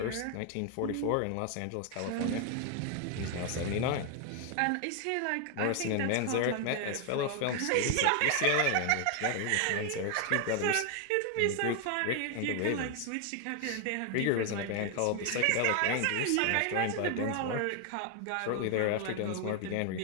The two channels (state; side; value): different; both; correlation 0.00